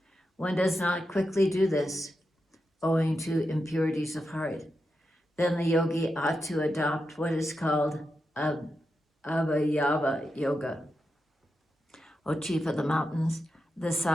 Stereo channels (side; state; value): both; normal; correlation 0.88